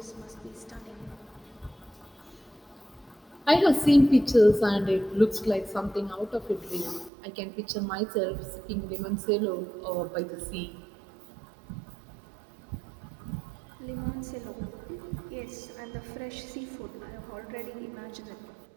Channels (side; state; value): left; drops out; at 7.1 s